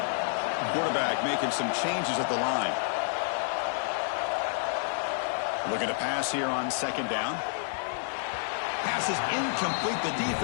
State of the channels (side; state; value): right; silent; digital silence